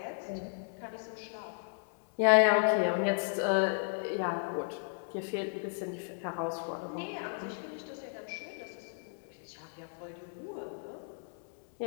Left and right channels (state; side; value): silent; right; digital silence